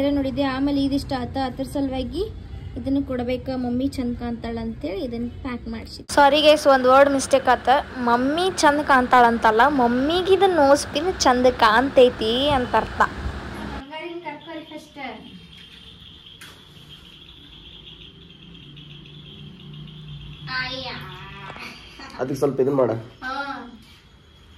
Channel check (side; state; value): both; identical; correlation 1.00